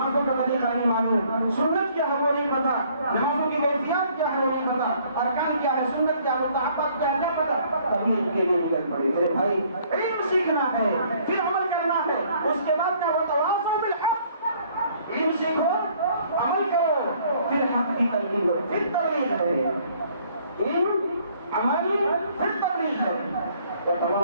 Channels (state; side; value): inverted; both; correlation -0.61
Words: کا طریقہ نہیں معلوم, سنت کیا ہے وہ نہیں پتا, نمازوں کی کیفیات کیا ہے وہ نہیں پتا, ارکان کیا ہے, سنت کیا ہے, مستحبات کیا ہے, نہیں پتا, تبھی ان کے لیے مدد پڑے. میرے بھائی علم سیکھنا ہے, پھر عمل کرنا ہے, اس کے بعد کا وتواصوا بالحق, علم سیکھو, عمل کرو, پھر حق کی تلقین کرو, پھر تبلیغ ہے. علم, عمل, پھر تبلیغ ہے.